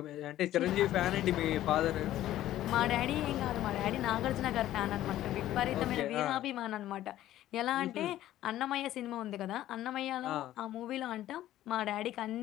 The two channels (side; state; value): right; quieter; 13.6 dB